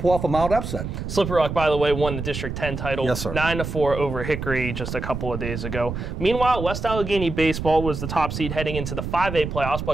off a mild upset. Slippery Rock, by the way, won the District 10 title. Yes, sir. 9-4 over Hickory just a couple of days ago. Meanwhile, West Allegheny Baseball was the top seed heading into the 5A playoffs,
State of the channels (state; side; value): noise; right; rumble, 6 dB below the sound